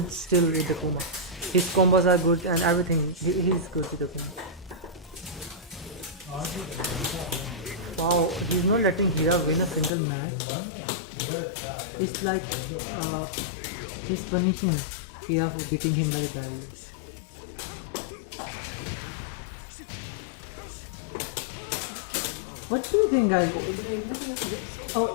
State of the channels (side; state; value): right; drops out; at 9.9 s